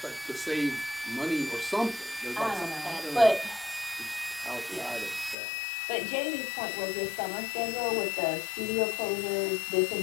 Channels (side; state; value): right; drops out; at 5.4 s